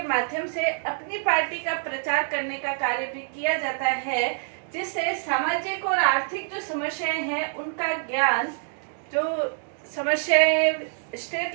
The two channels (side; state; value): left; silent; digital silence